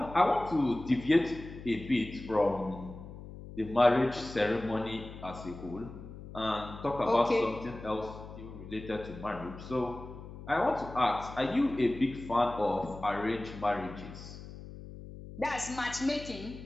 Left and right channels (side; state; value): left; noise; hum, 13 dB below the sound